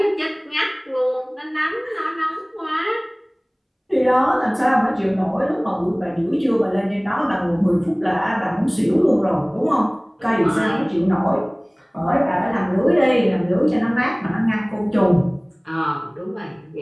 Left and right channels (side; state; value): both; identical; correlation 1.00